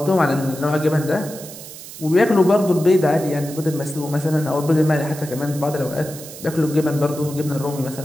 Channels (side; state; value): right; noise; hiss, 14 dB below the sound